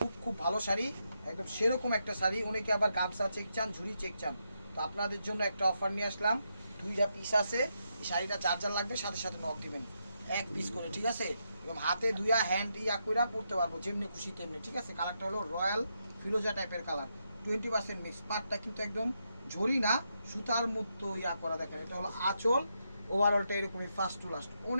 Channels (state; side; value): inverted; both; correlation -0.82